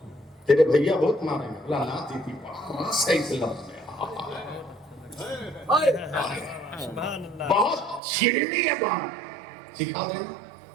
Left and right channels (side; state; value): left; drops out; at 8.0 s